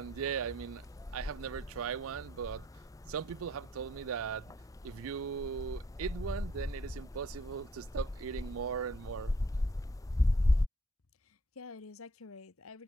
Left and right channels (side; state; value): both; normal; correlation 0.63